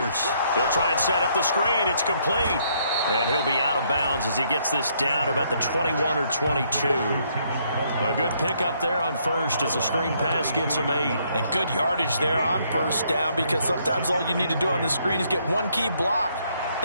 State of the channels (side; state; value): both; inverted; correlation -0.70